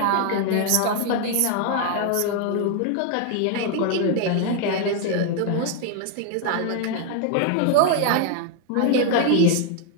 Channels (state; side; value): different; both; correlation 0.00